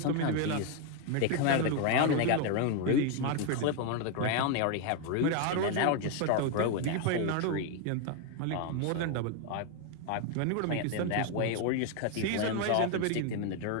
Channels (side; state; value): both; different; correlation 0.01